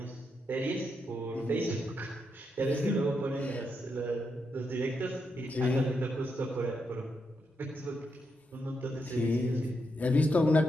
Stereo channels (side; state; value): both; normal; correlation 0.82